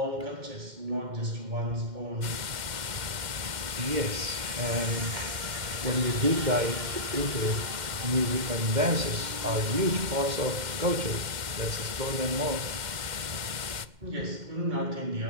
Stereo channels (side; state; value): left; late; 2.1 ms